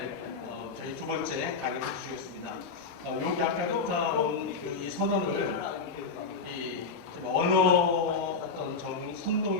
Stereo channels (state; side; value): quieter; right; 4.7 dB